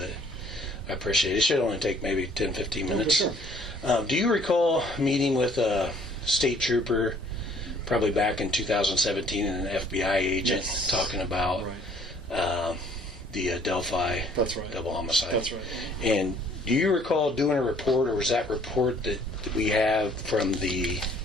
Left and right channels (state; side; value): normal; both; correlation 0.59